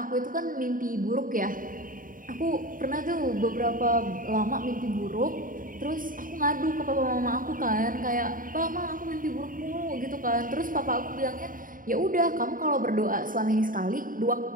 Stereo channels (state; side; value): late; left; 0.40 ms